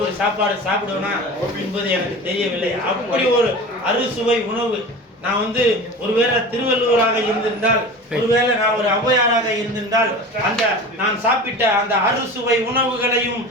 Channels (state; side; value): normal; both; correlation 0.34